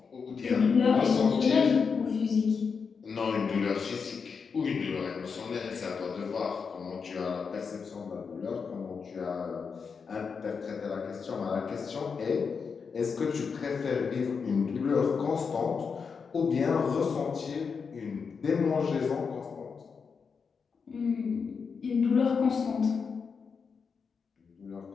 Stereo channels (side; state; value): right; quieter; 5.7 dB